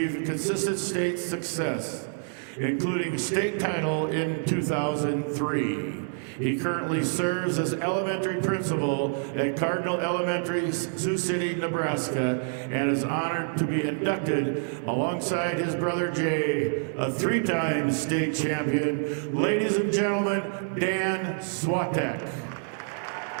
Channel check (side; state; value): left; silent; digital silence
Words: consistent state success, including state title in 2003. He currently serves as elementary principal at Cardinal Elementary, Sioux City, Nebraska, and is honored to be inducted alongside his brother Jay, a three-time state champion. Ladies and gentlemen, Dan Swatek.